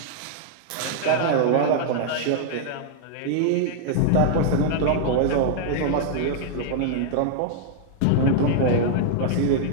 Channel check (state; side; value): different; both; correlation -0.01